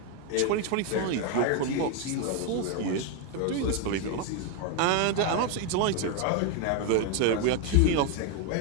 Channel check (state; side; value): different; both; correlation 0.01